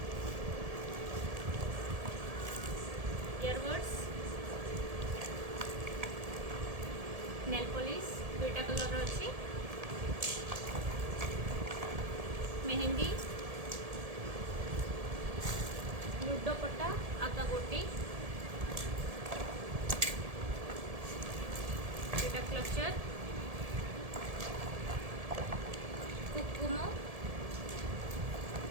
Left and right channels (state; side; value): late; left; 1.7 ms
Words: इयरबड्स नेल पॉलिश दुईटा कलर अच्छी मेहंदी लुडो पट्टा आका गोटी दुईटा क्लचर कुकुम